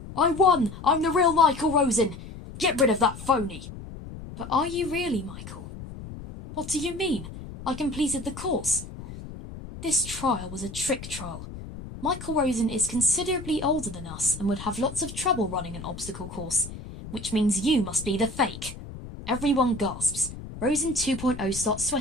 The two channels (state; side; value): noise; left; rumble, 12 dB below the sound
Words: I won! I'm the real Michael Rosen! Get rid of that phony! But are you really, Michael? What do you mean? I completed the course. This trial was a trick trial. Michael Rosen is considerably older than us and would have lots of trouble running an obstacle course, which means you must be the fake. Everyone gasps. Rosen 2.0 starts